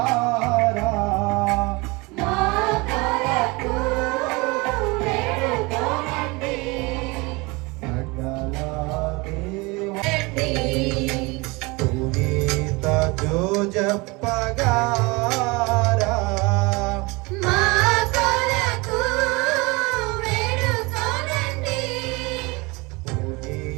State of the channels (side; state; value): left; quieter; 25.6 dB